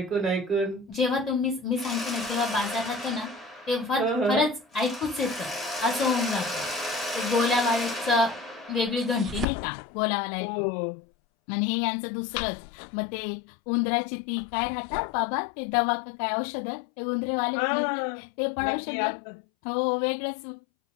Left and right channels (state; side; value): drops out; right; at 9.5 s